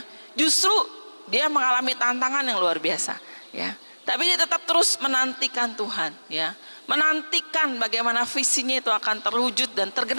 justru dia mengalami tantangan yang luar biasa, ya. Tapi dia tetap terus menantikan Tuhan, ya. Menantikan bagaimana visinya itu akan terwujud dan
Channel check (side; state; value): both; inverted; correlation -1.00